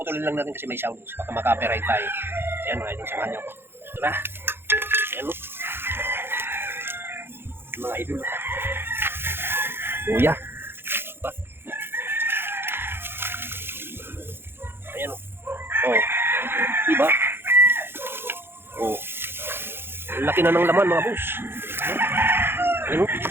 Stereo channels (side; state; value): left; late; 0.11 ms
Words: lang natin kasi may sound. Baka maka-copyright tayo. Ayan mga idol, samahan niyo ako. Ito na. Ayan o. Mga idol. Luya. Diba? Ayan o. Oh. Diba? Oh. Laki na ng laman mga boss. Ayan o.